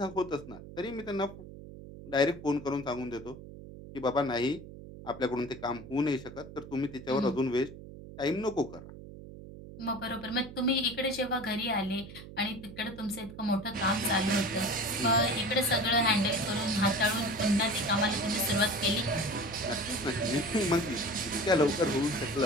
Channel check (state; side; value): noise; right; hum, 14 dB below the sound